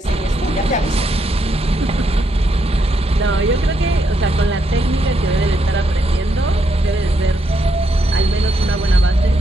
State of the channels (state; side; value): normal; both; correlation 0.78